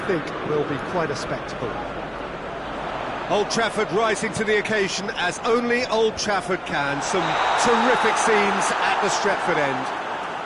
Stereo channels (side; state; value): both; identical; correlation 1.00